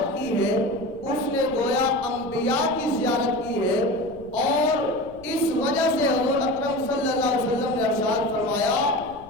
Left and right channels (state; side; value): noise; left; rumble, 22 dB below the sound